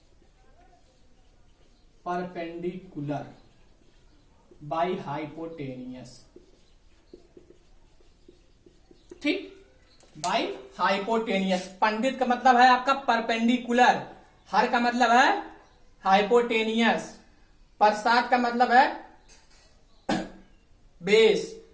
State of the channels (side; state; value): both; identical; correlation 1.00